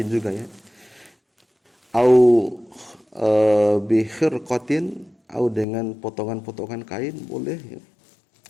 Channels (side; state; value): right; drops out; at 5.7 s